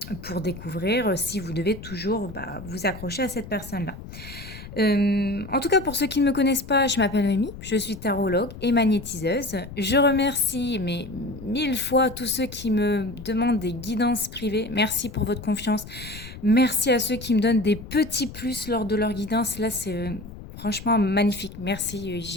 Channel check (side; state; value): left; noise; rumble, 14 dB below the sound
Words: Pour découvrir si vous devez toujours bah, vous accrocher à cette personne-là. En tout cas, pour ceux qui ne me connaissent pas, je m'appelle Noémie, je suis tarologue et magnétiseuse. Je remercie mais 1000 fois tous ceux qui me demandent des guidances privées. Merci pour votre confiance. Merci à ceux qui me donnent des petits plus lors de leur guidance. Là, c'est franchement magnifique. Merci,